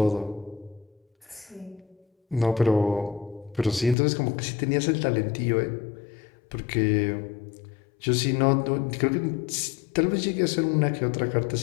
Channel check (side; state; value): right; drops out; at 4.0 s